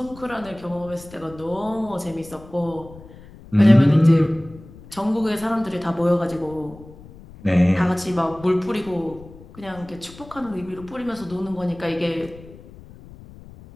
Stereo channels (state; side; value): noise; left; rumble, 20 dB below the sound